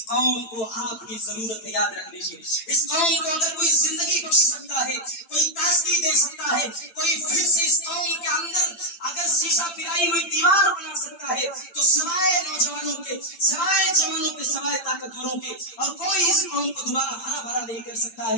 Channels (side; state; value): right; late; 8.9 ms